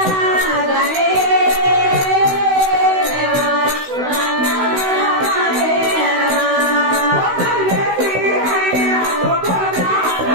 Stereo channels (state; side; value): late; left; 16 ms